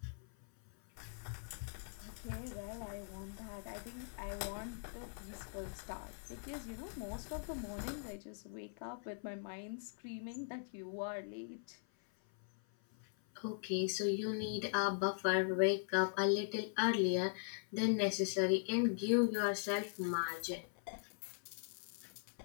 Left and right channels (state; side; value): silent; right; 50 dB below the other